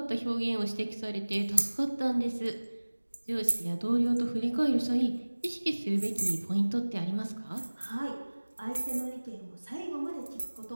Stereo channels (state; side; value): inverted; both; correlation -1.00